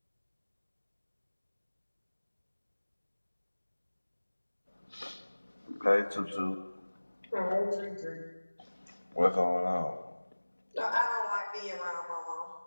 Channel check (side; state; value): both; inverted; correlation -1.00